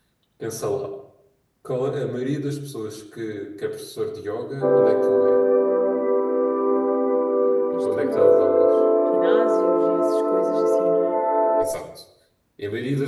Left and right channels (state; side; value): identical; both; correlation 1.00